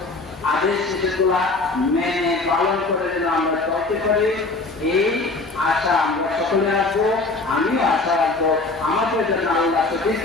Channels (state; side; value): quieter; right; 3.4 dB